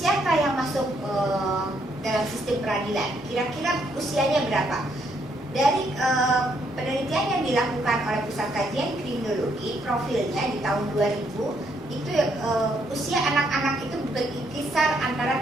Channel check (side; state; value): both; normal; correlation 0.73